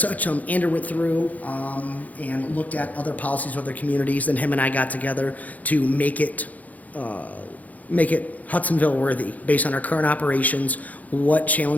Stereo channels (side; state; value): right; late; 0.077 ms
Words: such, Andrew went through and looked at other policies of other communities. Then him and I got together to make it make it Hudsonville worthy, based on our current operations, what